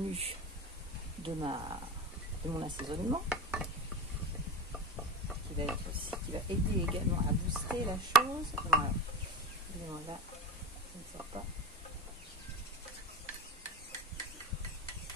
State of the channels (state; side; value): normal; both; correlation 0.28